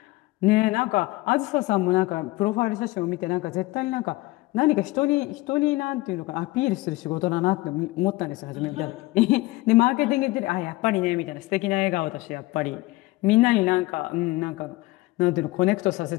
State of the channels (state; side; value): quieter; right; 20.4 dB